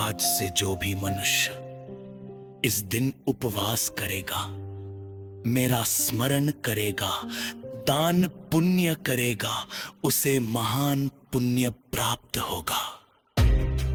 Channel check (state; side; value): identical; both; correlation 1.00